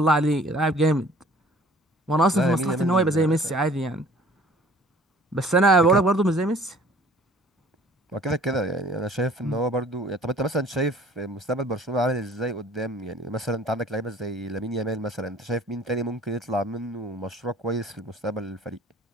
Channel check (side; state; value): both; normal; correlation 0.52